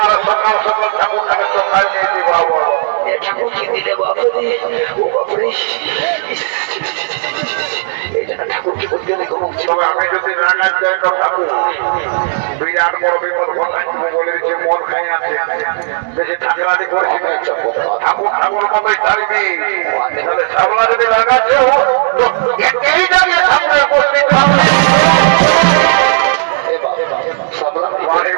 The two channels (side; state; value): left; silent; digital silence